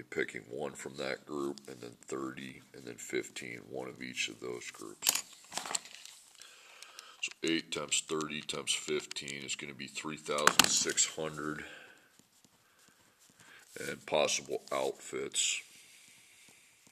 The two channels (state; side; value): identical; both; correlation 1.00